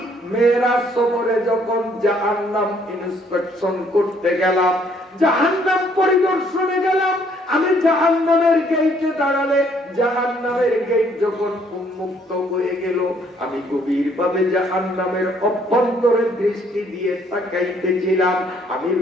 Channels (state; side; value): normal; both; correlation 0.65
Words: মেরাজ সফরে যখন জাহান্নাম ইন্সপেকশন করতে গেলাম, জাহান্নাম পরিদর্শনে গেলাম, আমি জাহান্নামের গেটে দাঁড়ালে জাহান্নামের গেট যখন উন্মুক্ত হয়ে গেল, আমি গভীরভাবে জাহান্নামের অভ্যন্তরে দৃষ্টি দিয়ে তাকাইতেছিলাম। আমি